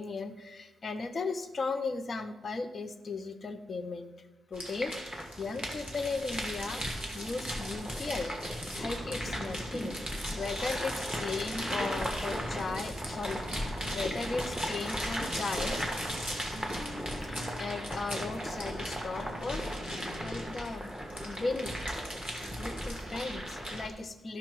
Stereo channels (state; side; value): normal; both; correlation 0.86